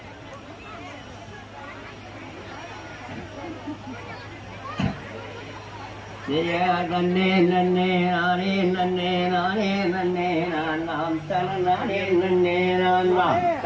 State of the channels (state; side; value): identical; both; correlation 1.00